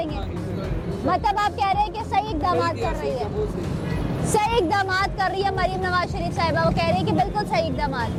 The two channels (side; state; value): both; identical; correlation 1.00